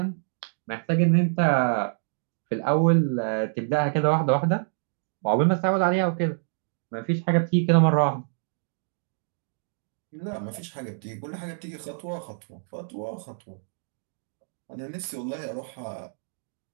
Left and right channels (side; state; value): left; silent; digital silence